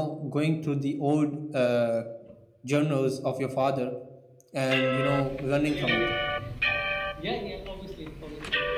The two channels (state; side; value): identical; both; correlation 1.00